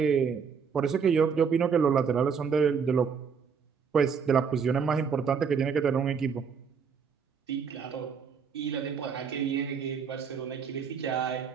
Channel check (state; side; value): quieter; left; 6.3 dB